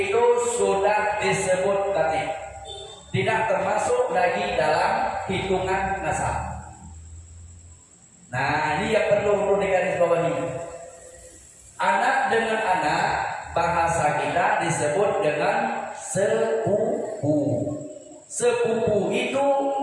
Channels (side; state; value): both; identical; correlation 1.00